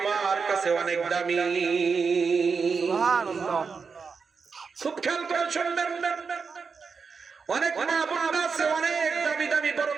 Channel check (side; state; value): left; quieter; 5.3 dB